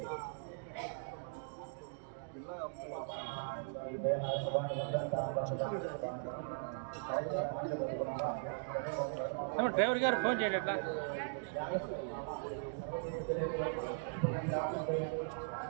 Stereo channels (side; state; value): left; silent; digital silence